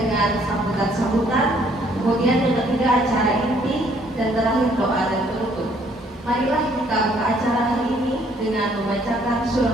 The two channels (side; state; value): both; normal; correlation 0.64